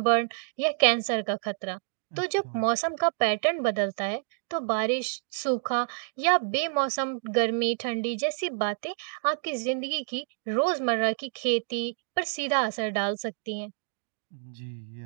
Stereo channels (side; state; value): left; silent; digital silence